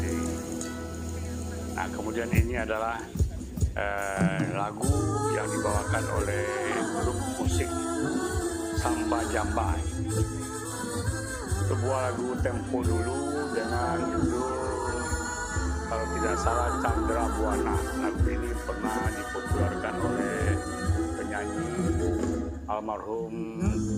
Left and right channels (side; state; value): both; identical; correlation 1.00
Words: ini. Nah, kemudian ini adalah lagu yang dibawakan oleh grup musik Samba Jamba. Sebuah lagu tempo dulu dengan judul, kalau tidak salah, Chandra Buana. Lagu ini pernah dipopulerkan oleh penyanyi almarhum